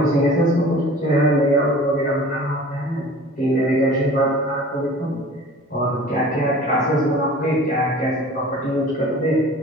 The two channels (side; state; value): both; normal; correlation 0.44